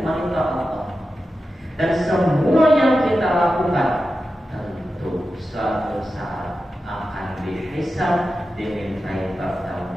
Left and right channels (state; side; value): normal; both; correlation 0.92